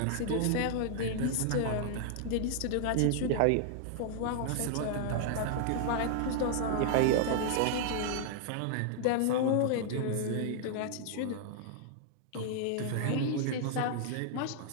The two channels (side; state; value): both; different; correlation -0.01